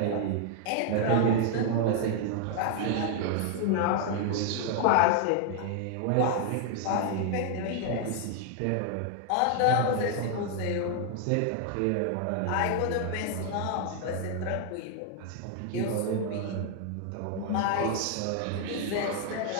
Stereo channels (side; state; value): both; different; correlation 0.00